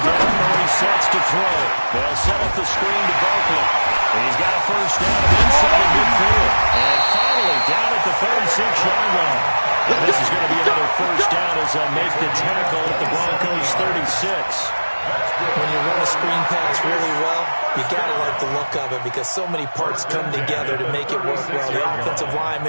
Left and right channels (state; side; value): inverted; both; correlation -1.00